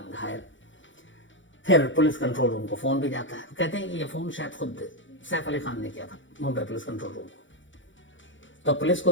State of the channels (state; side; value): late; right; 0.55 ms